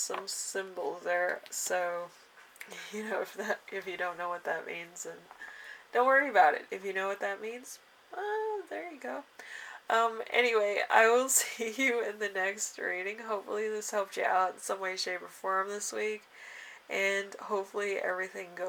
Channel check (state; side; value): identical; both; correlation 1.00